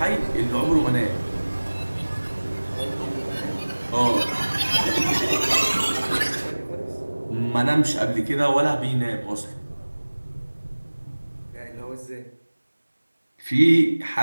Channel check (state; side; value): inverted; both; correlation -1.00